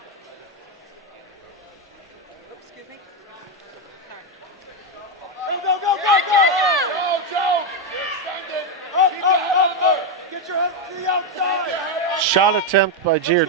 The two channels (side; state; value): both; normal; correlation 0.05